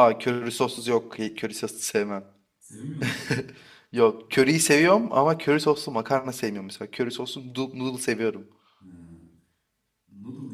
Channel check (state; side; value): identical; both; correlation 1.00